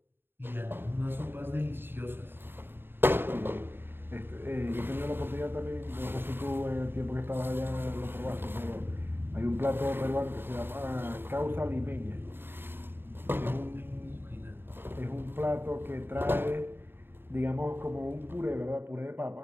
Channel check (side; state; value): left; late; 0.10 ms